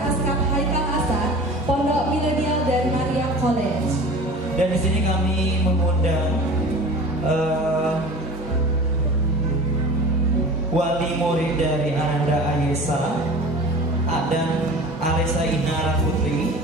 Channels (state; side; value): normal; both; correlation 0.39